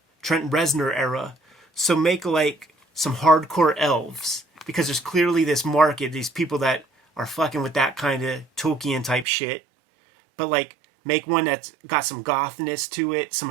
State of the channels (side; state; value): left; drops out; at 9.2 s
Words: Trent Reznor era. So make like some hardcore elves, because there's clearly this market, these people that are fucking with that kind of Tolkien type shit. But like make one that's got some gothness to it, some